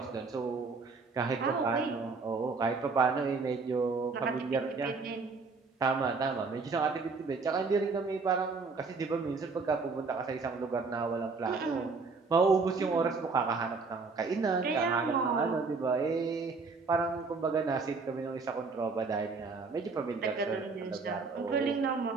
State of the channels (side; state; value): left; quieter; 4.4 dB